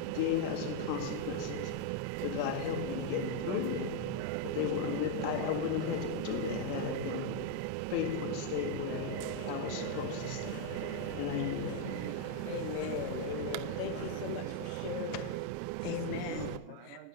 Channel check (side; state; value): both; different; correlation 0.01